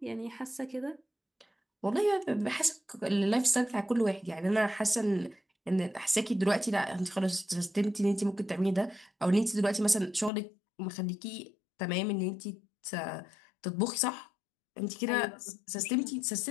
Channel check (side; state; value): right; drops out; at 10.3 s